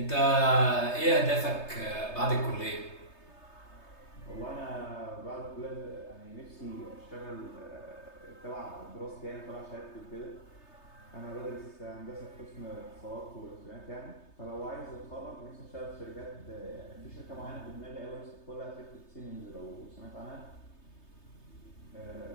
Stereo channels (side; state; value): right; late; 3.3 ms